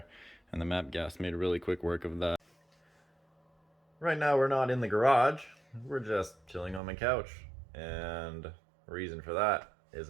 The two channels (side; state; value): left; drops out; at 6.8 s